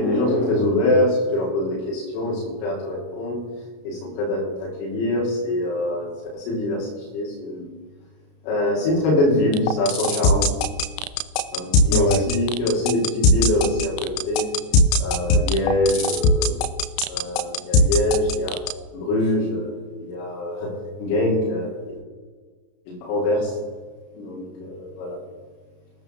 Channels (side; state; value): right; late; 33 ms